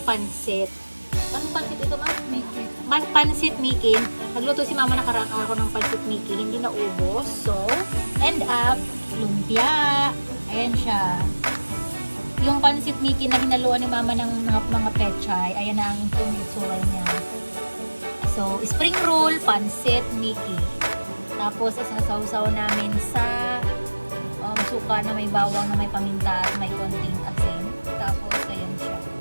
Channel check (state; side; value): inverted; both; correlation -1.00